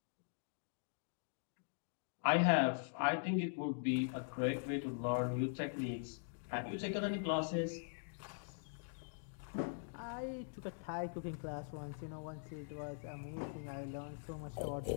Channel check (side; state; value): right; silent; digital silence